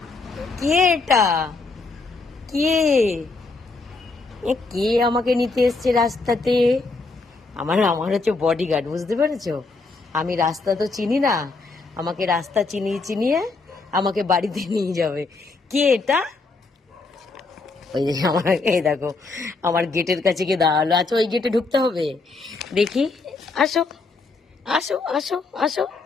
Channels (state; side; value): quieter; right; 3.8 dB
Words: কে এটা? কে? কে আমাকে নিতে এসছে রাস্তাতে? আমার আমার হচ্ছে বডিগার্ড, বুঝতে পেরেছো? আমি রাস্তা তো চিনি না, আমাকে রাস্তা চিনিয়ে চিনিয়ে আমাকে বাড়িতে নিয়ে যাবে। কে এটা? ওই যে আমার, এই দেখো আমার গেটের কাছে গিয়ে দাঁড়ালো। আচ্ছা ওই গেটে ঢুকতে হবে, দেখি। আসো আসো আসো আসো